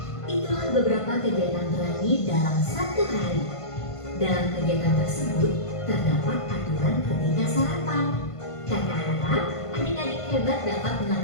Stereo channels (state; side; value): late; right; 1.5 ms